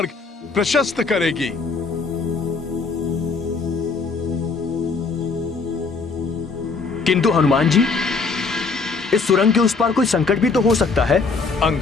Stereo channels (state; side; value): quieter; right; 4.5 dB